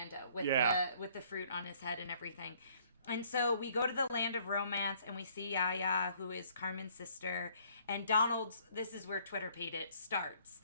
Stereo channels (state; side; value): inverted; both; correlation -0.61